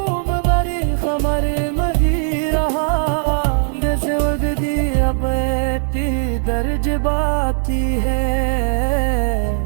दर्ज बाती है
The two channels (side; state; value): left; silent; 67 dB below the other